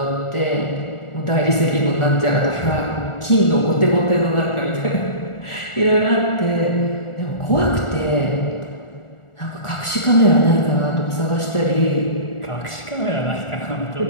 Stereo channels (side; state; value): right; late; 1.4 ms